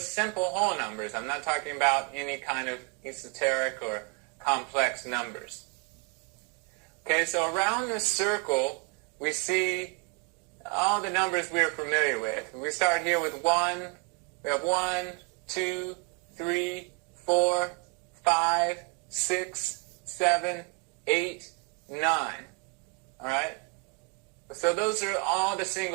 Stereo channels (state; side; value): quieter; left; 35.3 dB